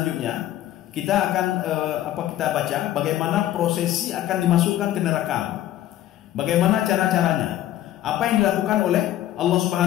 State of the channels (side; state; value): right; quieter; 13.1 dB